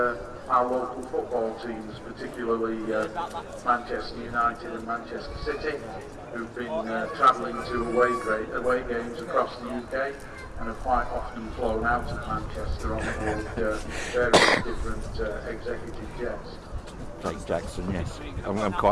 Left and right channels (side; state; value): both; identical; correlation 1.00